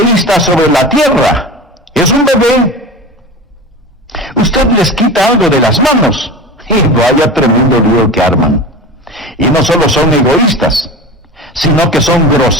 sobre la tierra es un bebé. Usted les quita algo de las manos y vaya tremendo lío que arman. Y no solo son egoístas, sino que son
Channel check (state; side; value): normal; both; correlation 0.30